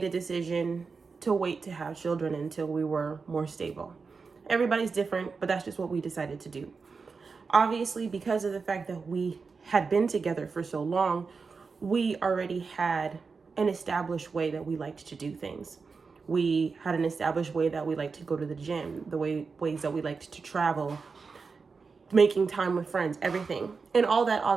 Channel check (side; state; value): left; quieter; 4.8 dB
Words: a decision to wait to have children until we were more stable. Everybody's different, but that's just what we decided to do. Obviously, because of the fact that we had been together for so long, we already had an established way that we liked to do things. We had an established way that we liked to go to the gym, ways that we liked to travel, making time with friends, everything. And all that